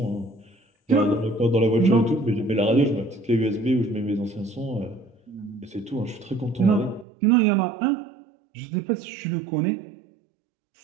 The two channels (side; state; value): left; drops out; at 7.1 s